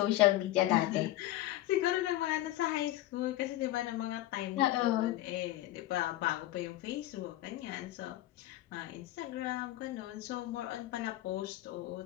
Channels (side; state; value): right; quieter; 15.6 dB